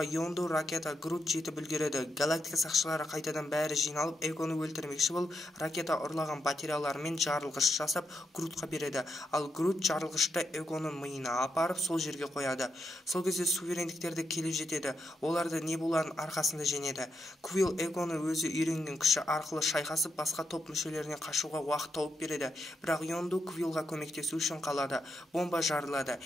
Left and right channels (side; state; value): both; normal; correlation 0.83